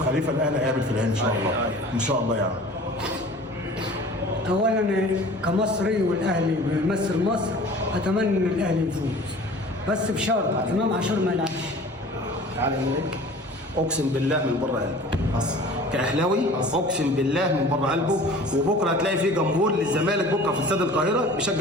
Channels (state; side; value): normal; both; correlation 0.44